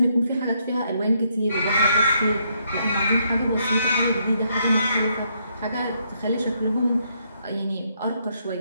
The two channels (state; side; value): inverted; both; correlation -0.74